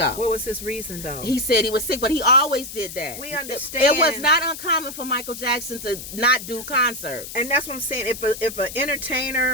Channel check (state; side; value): noise; left; hiss, 10 dB below the sound